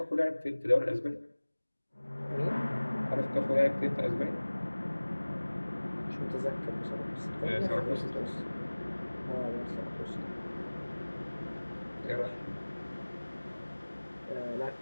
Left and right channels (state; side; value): inverted; both; correlation -1.00